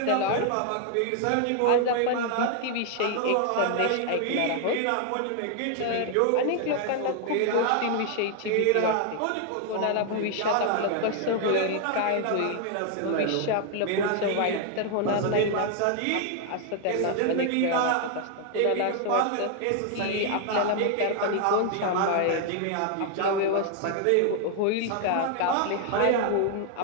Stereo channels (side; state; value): both; different; correlation 0.00